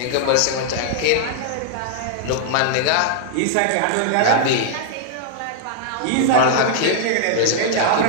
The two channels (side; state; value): both; different; correlation -0.01